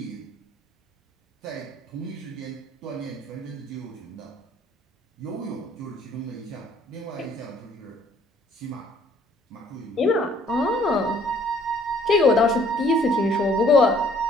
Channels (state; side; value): normal; both; correlation 0.60